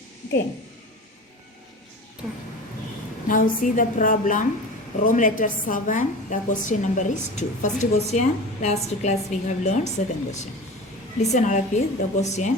Okay. Now see the problem. Roman letter 7, the question number is 2. First question, last class we have learned. Second question. Listen all of you, the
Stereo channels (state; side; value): normal; both; correlation 0.33